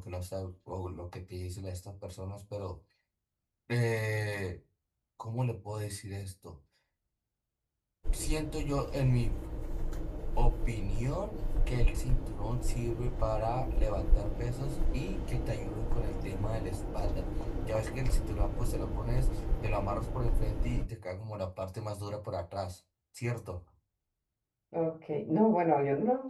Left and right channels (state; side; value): identical; both; correlation 1.00